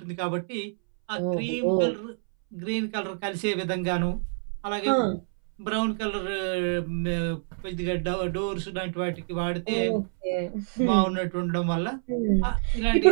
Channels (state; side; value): silent; left; 60 dB below the other